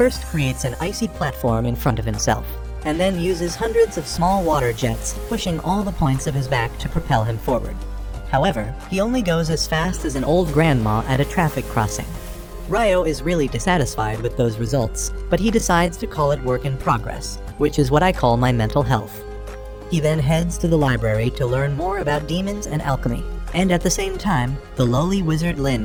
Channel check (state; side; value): identical; both; correlation 1.00